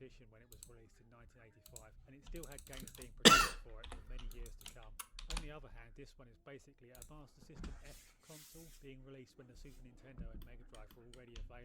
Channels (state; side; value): identical; both; correlation 1.00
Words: when it was released in 1985, and it still had games being produced for it for many years to come. On the other hand, this one is basically a Master System F console being released when the Super Nintendo and Mega Drive were already